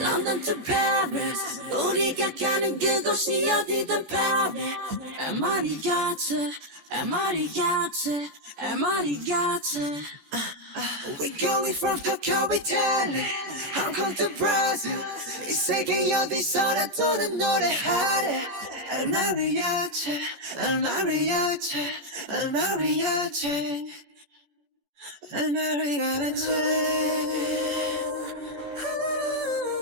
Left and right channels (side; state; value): left; late; 14 ms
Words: to Paris 우리가 가는 그곳이 어디든 Paris MR이같이 MR이같이 MR이같이 We're going from Tokyo, Italy Hong Kong to Brazil 이 세계 어디서나 도는 노래하래 El Mariachi, El Mariachi, El Mariachi El Mariachi